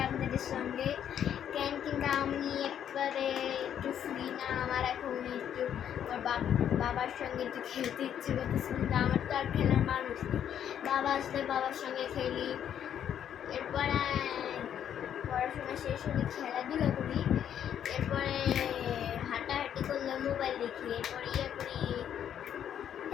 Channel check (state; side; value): quieter; right; 9.5 dB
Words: আপনাদের সঙ্গে। কিন্তু আমি একবারে একটু ফ্রি না, আমার এখন একটু বাবার সঙ্গে একটু খেলতে ইচ্ছে করতেছে, কিন্তু আমার তো আর খেলার মানুষ নেই। বাবা আসলে বাবার সঙ্গে খেলি, এরপরে পড়াশোনা শেষ হলে খেলাধুলা করি, এরপরে হাঁটাহাঁটি করলে মোবাইল দেখি, এরপরে ইয়ে করি।